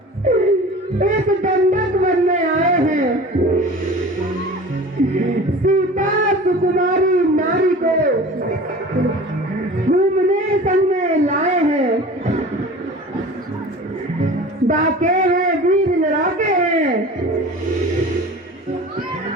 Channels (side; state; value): both; normal; correlation 0.39